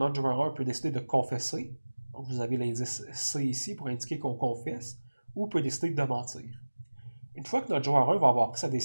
joueur 1 peut décider de confesser. Donc, vous avez l'indice C ici pour indiquer qu'on confesse, ou peut décider de mentir. Une fois que notre joueur 1 va avoir pris sa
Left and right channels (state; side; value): inverted; both; correlation -1.00